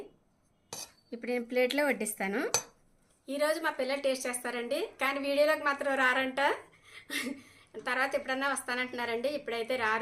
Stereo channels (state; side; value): identical; both; correlation 1.00